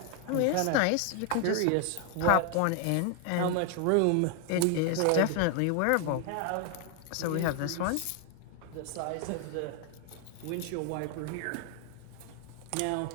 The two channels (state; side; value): different; both; correlation 0.00